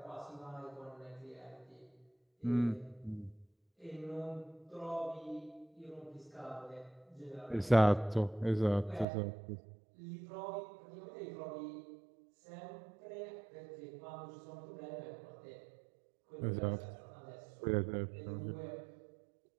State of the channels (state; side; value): drops out; left; at 9.1 s